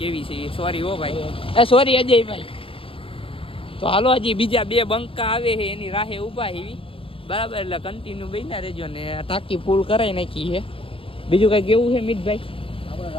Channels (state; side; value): late; right; 0.26 ms